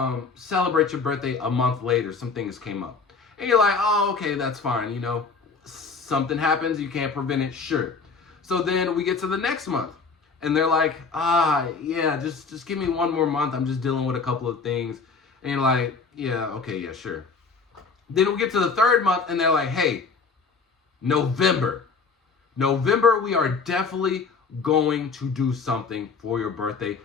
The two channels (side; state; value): right; quieter; 4.8 dB